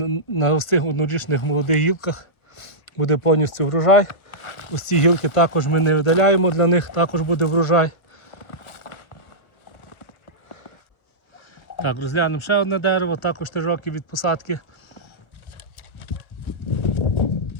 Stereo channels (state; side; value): late; right; 1.1 ms